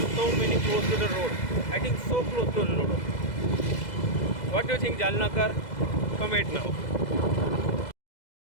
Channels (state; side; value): late; right; 2.0 ms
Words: so many close to the road. I think so close to the road. What do you think, Jalnakar? Comment now.